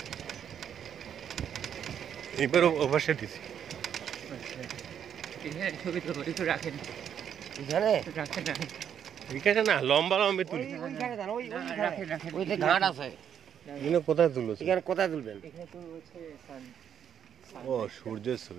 এবার ও পাশে দিচ্ছি। এখানে ছবি তো একটু রাখেন, এখানে রাখেন রাখেন, এখানে না লম্বা লম্বা তুলি, ওই যে ঘাট আছে। এখানে কোথায় তুলো? এখানে কোথায় তুলবেন? ও সূর্যের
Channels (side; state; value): left; quieter; 8.7 dB